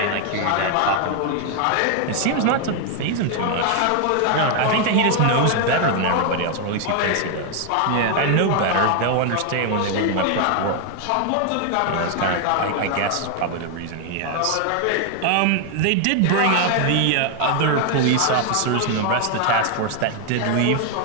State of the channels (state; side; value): different; both; correlation 0.01